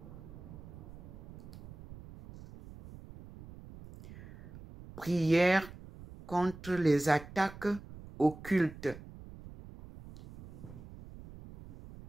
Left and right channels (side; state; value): right; noise; rumble, 16 dB below the sound